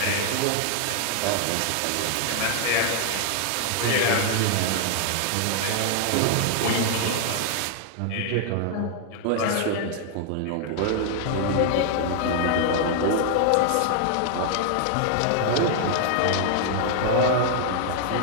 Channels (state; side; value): different; both; correlation 0.00